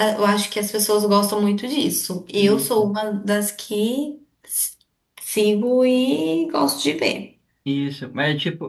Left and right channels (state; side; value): identical; both; correlation 1.00